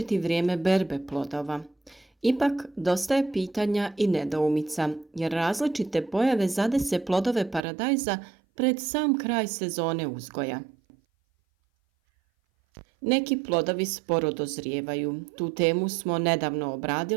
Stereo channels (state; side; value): drops out; left; at 7.6 s